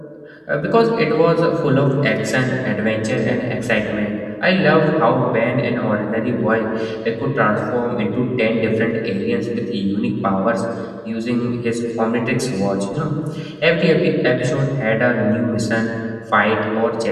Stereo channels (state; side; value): identical; both; correlation 1.00